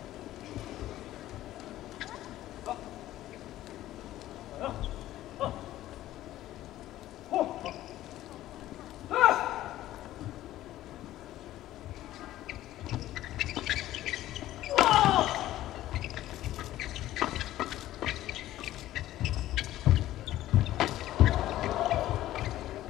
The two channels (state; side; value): quieter; right; 14.3 dB